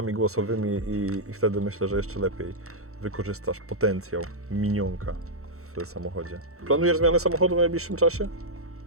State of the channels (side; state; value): left; late; 0.64 ms